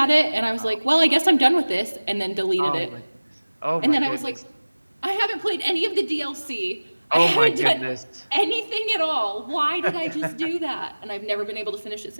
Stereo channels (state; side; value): inverted; both; correlation -1.00